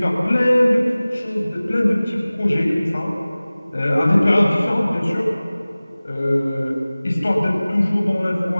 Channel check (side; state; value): both; inverted; correlation -0.98